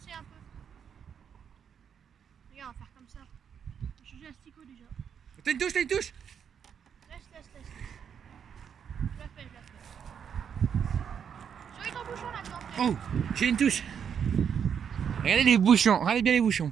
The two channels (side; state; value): left; quieter; 7.7 dB